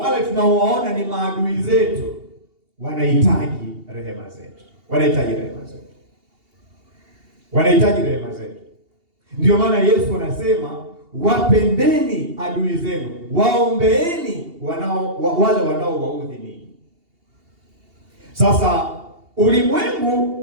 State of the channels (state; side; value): late; left; 2.8 ms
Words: tunaowaona ni maadui zetu, wanahitaji rehema zetu, wanahitaji rehema zetu, wanahitaji rehema zetu. Ndio maana Yesu anasema, wapendeni adui zenu, waombeeni wale wanaowaudhi ninyi. Sasa